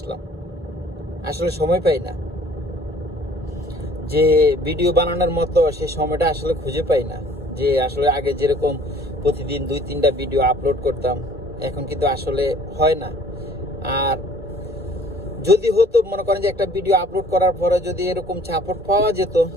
আসলে সময় পাই না, যে ভিডিও বানানোর মতো সে সময়টা আসলে খুঁজে পাই না। যে আসলে আগে যেরকম প্রতিদিন 2-3টা ভিডিও আপলোড করতাম, এখন কিন্তু আসলে হয় না। আর যদি হতো, মনে করেন যে একটা ভিডিও আপলোড করার পরে যদি এরকম সাপোর্ট পাওয়া যেত,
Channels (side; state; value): both; normal; correlation 0.54